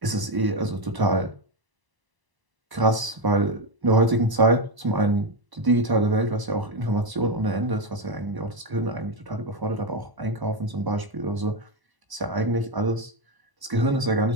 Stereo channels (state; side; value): late; left; 1.0 ms